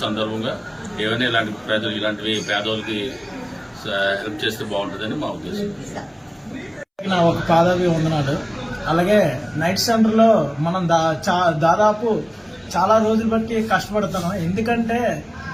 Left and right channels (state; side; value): identical; both; correlation 1.00